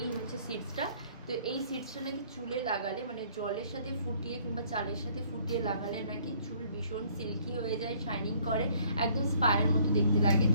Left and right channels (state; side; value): inverted; both; correlation -0.61